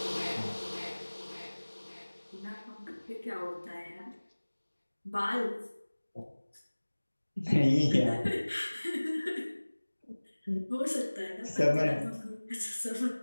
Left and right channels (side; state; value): both; inverted; correlation -1.00